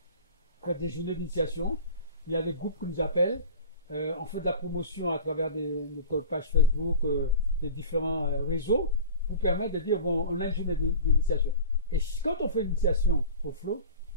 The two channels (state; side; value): inverted; both; correlation -0.37